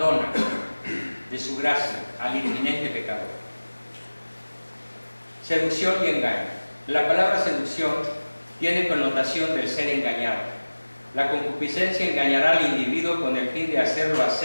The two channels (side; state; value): both; inverted; correlation -1.00